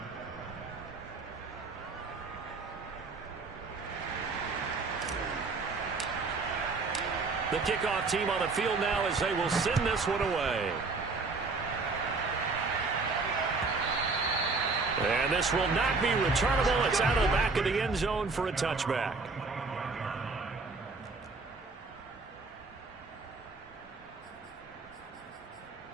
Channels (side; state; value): left; quieter; 4.0 dB